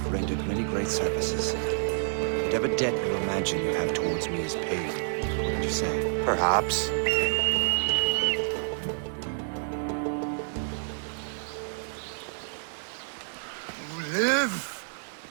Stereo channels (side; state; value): left; silent; digital silence